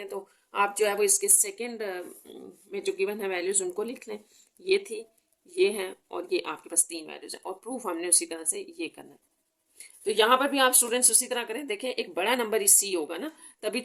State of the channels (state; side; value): identical; both; correlation 1.00